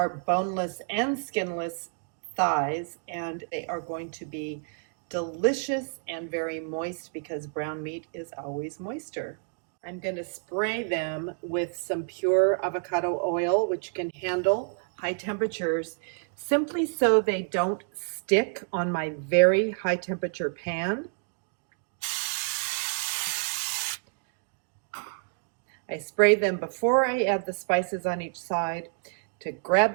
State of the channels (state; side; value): silent; left; 59 dB below the other